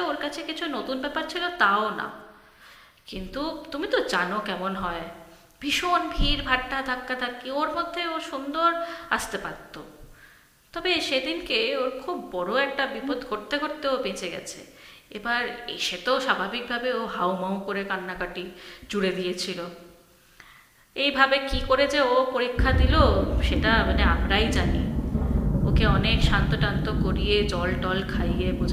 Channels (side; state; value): both; identical; correlation 1.00